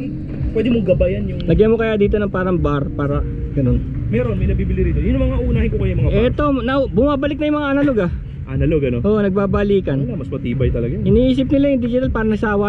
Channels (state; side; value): identical; both; correlation 1.00